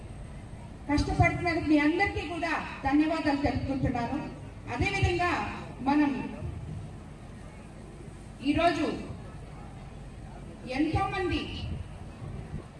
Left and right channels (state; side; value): identical; both; correlation 1.00